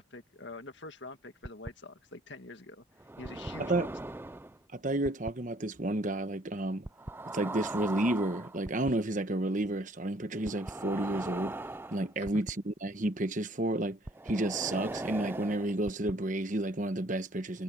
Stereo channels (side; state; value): both; normal; correlation 0.61